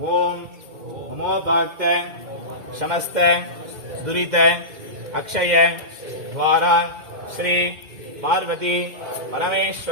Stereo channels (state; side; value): late; left; 2.3 ms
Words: ஓம் நமோ பக்த சமஸ்த துரித அக்ஷய துவாரா ஸ்ரீ பார்வதி